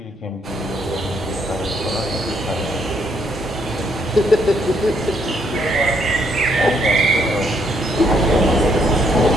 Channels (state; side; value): normal; both; correlation 0.72